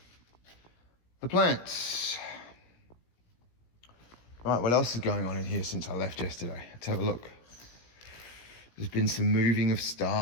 the plants. Right, what else is going on in here since I left yesterday? Let's have a look. There's been some moving of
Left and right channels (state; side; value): late; right; 17 ms